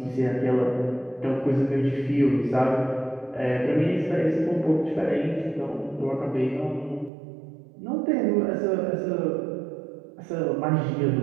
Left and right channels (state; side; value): drops out; left; at 7.1 s